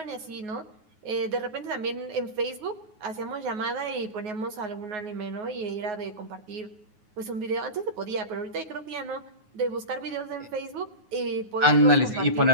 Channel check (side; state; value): left; late; 9.5 ms